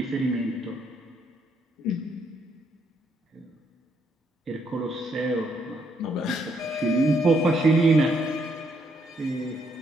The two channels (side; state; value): both; normal; correlation 0.73